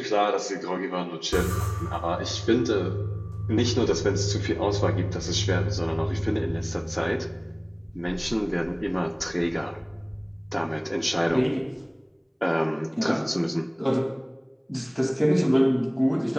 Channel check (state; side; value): identical; both; correlation 1.00